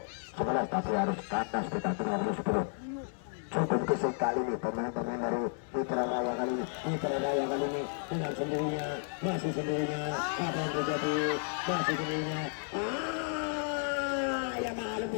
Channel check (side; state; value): right; silent; 56 dB below the other